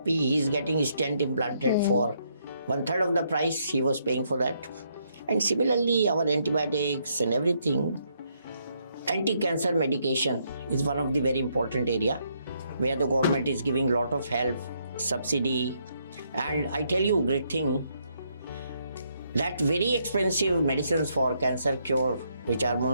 he is getting stent implanted for 1/3 of the price he was paying for that. And similarly, our antibiotics and everything, anti-cancer medication is one of the very important area where the government is giving a lot of help, subsidy. And I tell you, great thing, that very expensive medicines for cancer cure, which are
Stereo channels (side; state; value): both; inverted; correlation -0.74